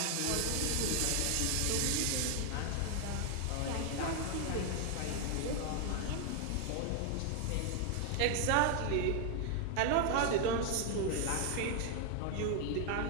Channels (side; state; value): both; different; correlation 0.00